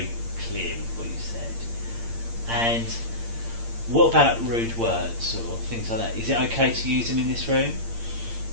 clear with what you said. And what about rude words or things like that? Is it okay to use them in this room?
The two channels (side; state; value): left; late; 8.7 ms